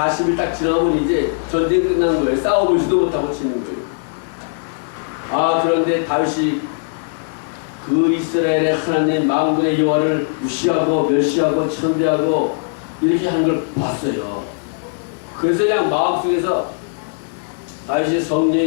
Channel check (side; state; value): right; silent; digital silence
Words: 딱 지나면 이제 전쟁 끝나는 거예요. 싸워보지도 못하고 치는 거예요. 그런데 다윗이 그 이스라엘의 하나님 만군의 여호와를 무시하고 멸시하고 천대하고 이렇게 하는 걸 봤어요. 그래서 그냥 마음속에서 다윗이